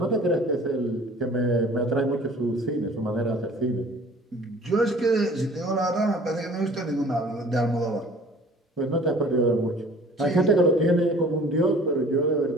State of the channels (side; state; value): both; normal; correlation 0.49